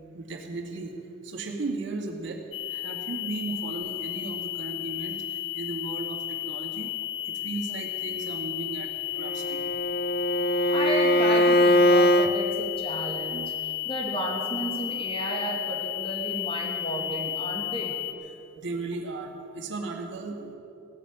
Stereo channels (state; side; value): normal; both; correlation 0.28